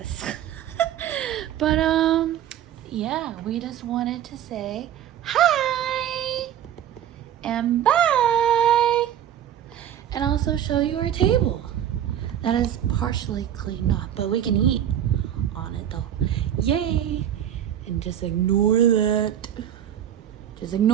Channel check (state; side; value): quieter; left; 10.5 dB